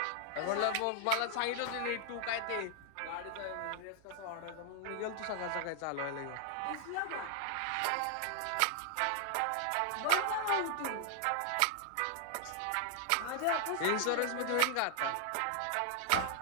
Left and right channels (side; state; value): both; different; correlation 0.00